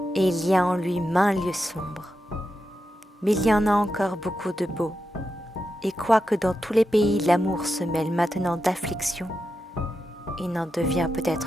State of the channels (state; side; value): normal; both; correlation 0.88